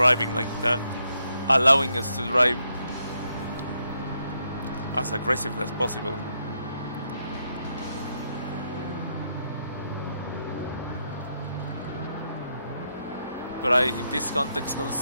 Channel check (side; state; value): both; inverted; correlation -0.79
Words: like that, allowing us to drive as aggressively as possible. But in this context,